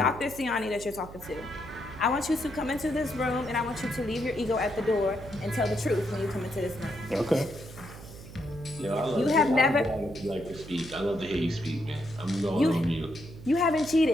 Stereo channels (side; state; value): right; noise; hum, 15 dB below the sound